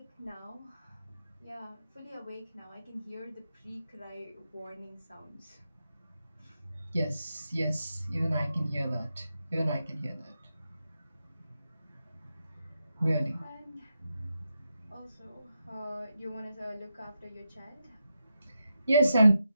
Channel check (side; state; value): both; inverted; correlation -0.86